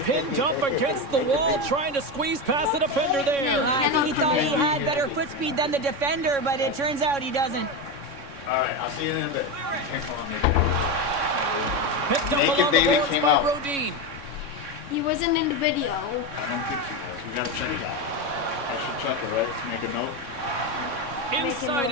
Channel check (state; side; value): late; left; 3.6 ms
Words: pinned up against the wall trying to squeeze past the defender there. I think he thought he had better foot speed than the defender, but it turns out he doesn't. All right, I'll see you in a bit. Picked up Naked along the baby boards came by out. Rodin. He wasn't in the video. I don't think he was. We gotta check it out. I should check it, right? Make a note. Inside